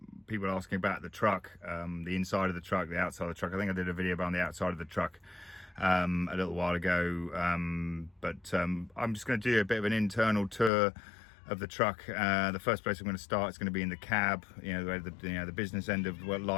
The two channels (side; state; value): right; drops out; at 10.7 s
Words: people asking about the truck, the inside of the truck, the outside of the truck. I think I did a video about the outside of the truck a little while ago, but I'm just going to do a bit of an internal tour of the truck. The first place I'm going to start is going to be in the cab. Where the business end of what